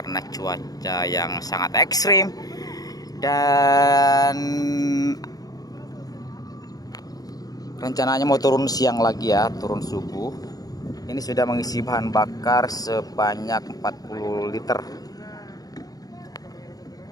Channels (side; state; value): right; late; 0.18 ms